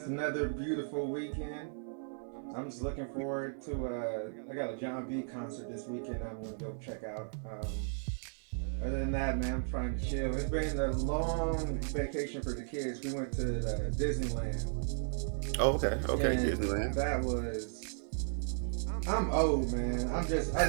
another beautiful weekend. I'm just looking forward to. I got a John B concert this weekend. I'm gonna go check out. Other than that, man, I'm trying to chill. It's been a long vacation for the kids. We went to Disneyland, Oh, okay, okay. and Disneyland. that was. I'm old, man. I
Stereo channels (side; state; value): left; silent; digital silence